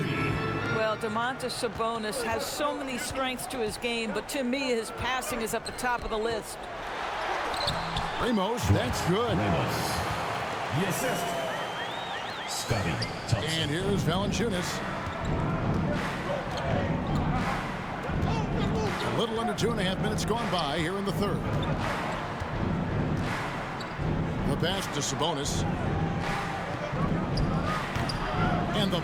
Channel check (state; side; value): identical; both; correlation 1.00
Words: Well, Domantas Sabonis has so many strengths to his game, but to me, his passing is at the top of the list. Ramos, that's good. Ramos. The assist. Scotty Thompson. And here's Valanciunas. A little under 2.5 minutes gone by here in the third. The pass to Sabonis. And the